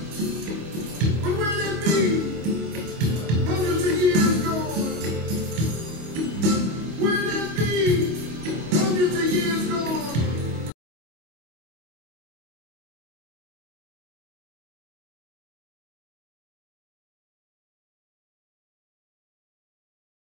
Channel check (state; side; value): late; left; 24 ms